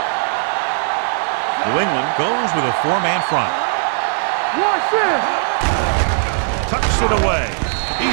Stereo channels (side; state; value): left; silent; digital silence